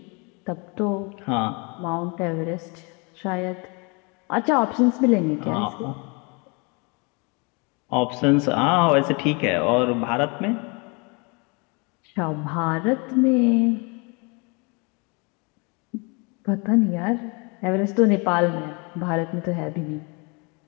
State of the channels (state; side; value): quieter; right; 31.0 dB